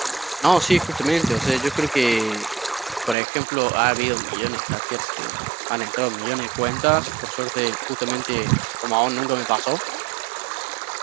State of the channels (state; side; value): drops out; left; at 3.2 s